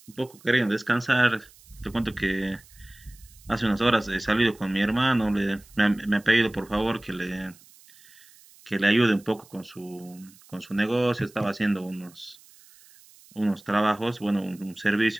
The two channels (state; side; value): noise; right; hiss, 25 dB below the sound